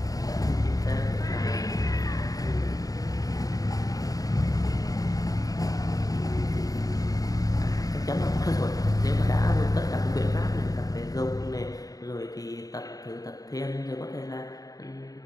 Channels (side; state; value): right; late; 0.18 ms